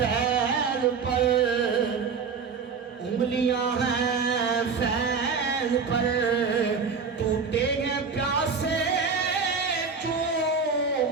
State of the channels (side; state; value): left; quieter; 5.4 dB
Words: پر, انگلیاں ہیں فیض پر, ٹوٹے ہیں پیاسے چوم